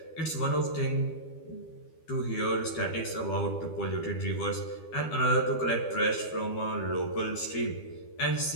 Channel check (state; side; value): late; right; 12 ms